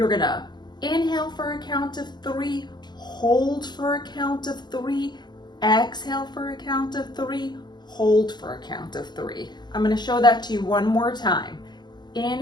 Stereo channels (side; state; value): right; late; 0.21 ms